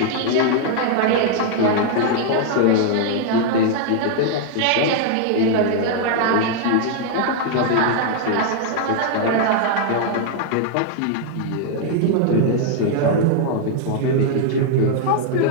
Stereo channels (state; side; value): different; both; correlation 0.00